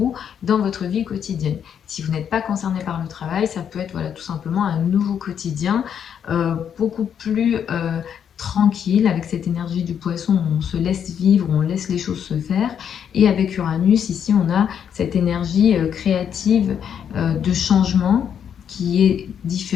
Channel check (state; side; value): quieter; right; 8.3 dB